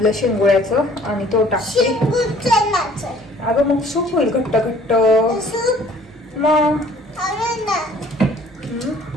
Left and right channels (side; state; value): both; normal; correlation 0.54